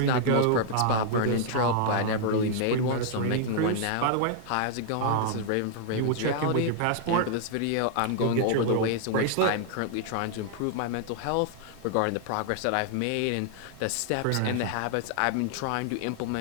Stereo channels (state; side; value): different; both; correlation -0.01